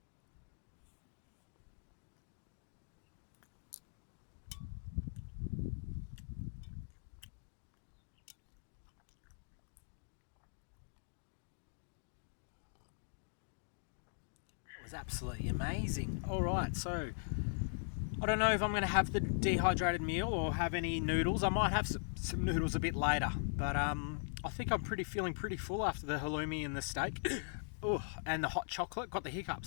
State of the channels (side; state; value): right; silent; digital silence